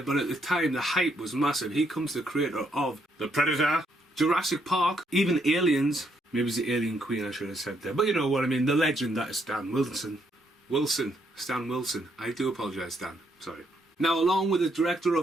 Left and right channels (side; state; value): both; normal; correlation 0.74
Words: but at the time the hype was massive. He comes the creator of The Predator, Jurassic Park, even Aliens. Maybe it's the Alien Queen I should have said there, but you know what I mean, the legend that is Stan Wilson. Stan Wilson. I do apologise, Stan. Sorry. Now, along with the director